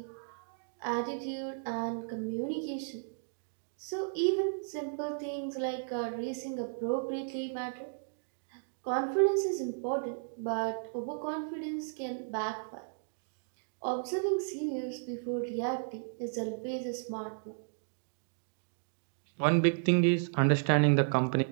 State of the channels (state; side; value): silent; left; digital silence